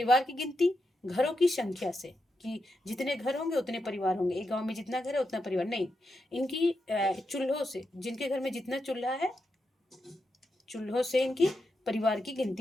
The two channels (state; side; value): normal; both; correlation 0.86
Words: की गिनती घरों की संख्या से, कि जितने घर होंगे उतने परिवार होंगे। एक गांव में जितना घर है उतना परिवार नहीं, इनकी चूल्हों से, जिनके घर में जितना चूल्हा है, चूल्हों से इनकी परिवार की